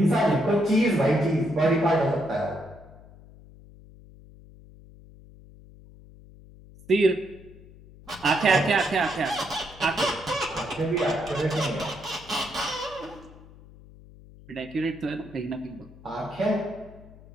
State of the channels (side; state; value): left; noise; hum, 21 dB below the sound